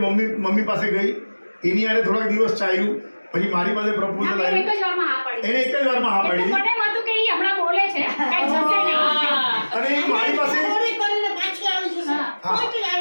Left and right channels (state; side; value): inverted; both; correlation -1.00